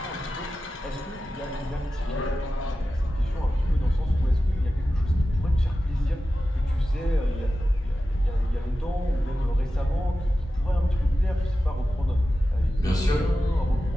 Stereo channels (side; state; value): both; normal; correlation 0.93